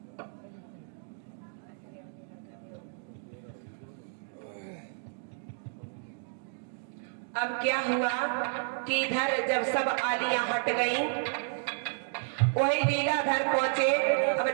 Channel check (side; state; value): left; silent; digital silence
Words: अब क्या हुआ कि इधर जब सब आलियां हट गई, वही लीलाधर पहुंचे। अब